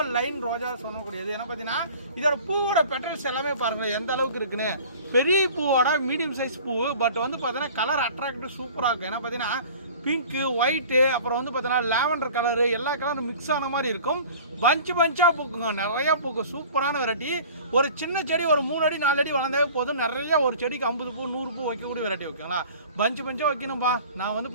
லைன் ரோஜா சொல்லக்கூடியது. ஏன்னா பார்த்தீங்கன்னா இதோட பூவோட பெட்டல்ஸ் எல்லாமே பாருங்கள் எந்த அளவுக்கு இருக்குன்னு. பெரிய பூவோட மீடியம் சைஸ் பூ, பட் வந்து பார்த்தீங்கன்னா கலர் அட்ராக்டிவ் சூப்பராக இருக்கும். ஏன்னா பார்த்தீங்கன்னா பிங்க்கு, ஒயிட்டு, அப்புறம் வந்து பார்த்தீங்கன்னா லேவண்டர் கலரு, எல்லா கலரும் மிக்ஸ் ஆன மாதிரி இருக்கும். பஞ்சாக பூக்குங்க, நிறையா பூக்கும். சூப்பரான வெரைட்டி. ஒரு சின்ன செடி ஒரு 3 அடி 4 அடி வளர்ந்தாவே போதும். நிறையா ஒரு செடிக்கு 50 பூ 100 பூ வைக்கக்கூடிய வெரைட்டி வைக்கங்களா. பஞ்சாக வைக்கணும்பா. நான் வந்து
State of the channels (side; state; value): both; inverted; correlation -0.44